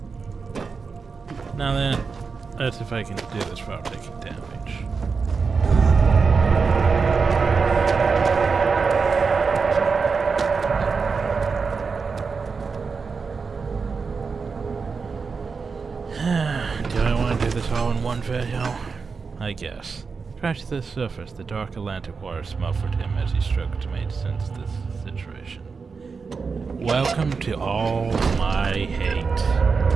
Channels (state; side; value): quieter; left; 5.0 dB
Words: Now then, Let's see if I can do this without taking damage. Do I want to do this all in one video? I guess. Crash to the surface, the dark Atlantic water smothered him as he struggled to make sense of this situation. Welcome to all my hate.